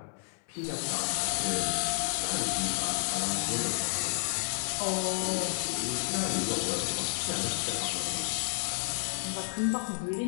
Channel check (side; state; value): right; silent; 57 dB below the other